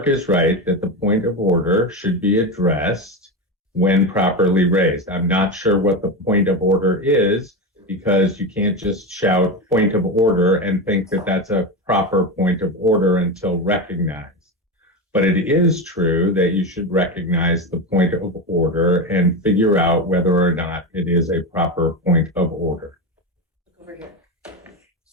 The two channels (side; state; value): both; normal; correlation 0.18